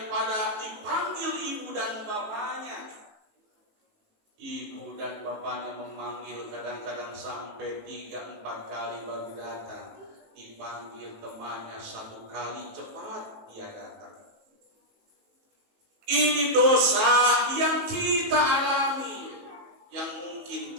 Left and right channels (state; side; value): late; left; 18 ms